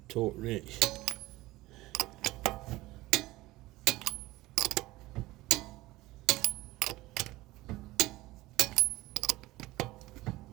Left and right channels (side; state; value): left; quieter; 18.6 dB